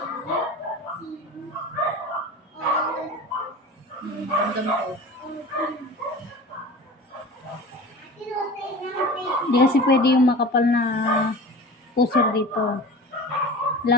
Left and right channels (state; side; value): normal; both; correlation 0.36